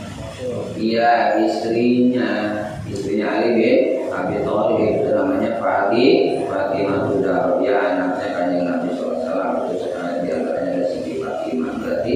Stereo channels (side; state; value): both; identical; correlation 1.00